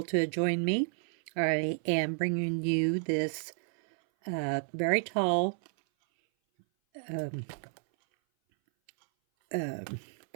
to join me. I am bringing you this very tall um,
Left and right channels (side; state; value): left; silent; 57 dB below the other